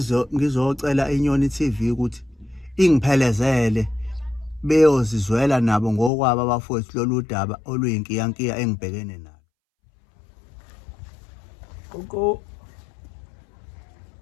ngizocela iNyoni TV ukuthi ingiphelezele beyozizwela nabo ngokwabo abafowethu lolu daba oluyinkiyankiya engibhekene nalo Koko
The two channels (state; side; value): drops out; right; at 6.1 s